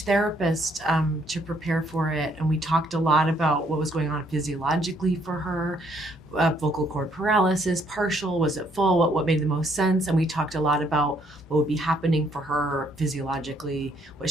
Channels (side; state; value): both; normal; correlation 0.68